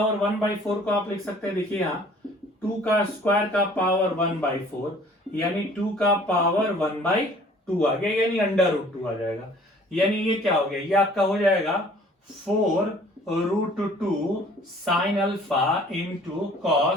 1/4 को आप लिख सकते हैं, देखिए यहाँ 2 का स्क्वायर का पावर 1/4 यानी 2 का पावर 1/2 आ गया, यानी √2 आ जाएगा। यानी ये क्या हो गया, ये आपका हो जाएगा 4√2 sine alpha into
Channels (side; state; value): both; normal; correlation 0.53